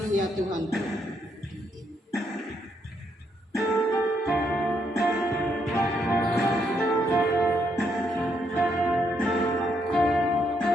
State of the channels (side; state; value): both; normal; correlation 0.76